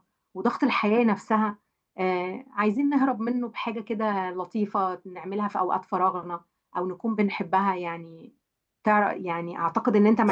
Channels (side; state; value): both; identical; correlation 1.00